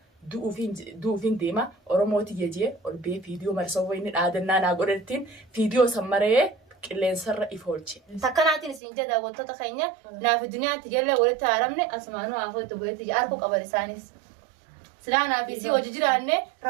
duufin deema Oromooti jejee ol bee fiidiyoo marsoo wayni dhaadannaa naa godhattiin fiidiyoo sammaree qilleensarra ifoolche. Takkanaatiin isin jedha wantoota keenya naaf duniyaatti jalla walitti haaramne asmaanuu afoo itti bu'eetti arku qaban isaanis. Silaa naaf isii hojii jiraanne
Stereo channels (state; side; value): drops out; left; at 8.8 s